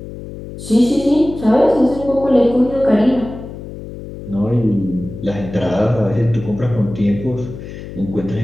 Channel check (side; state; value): left; noise; hum, 12 dB below the sound